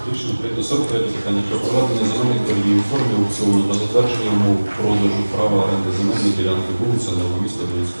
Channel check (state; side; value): inverted; both; correlation -1.00